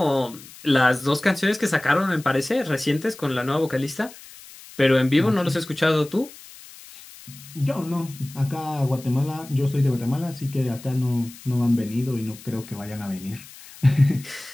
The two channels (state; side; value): noise; left; hiss, 19 dB below the sound